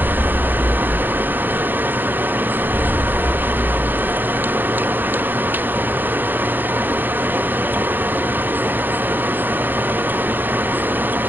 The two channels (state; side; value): late; left; 0.090 ms